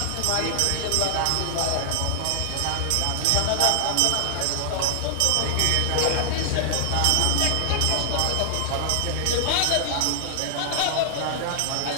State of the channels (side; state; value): both; different; correlation 0.00